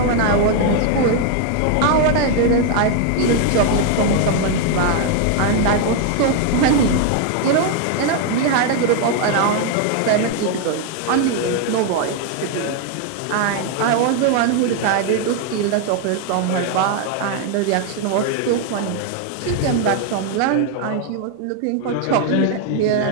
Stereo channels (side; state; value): both; different; correlation 0.00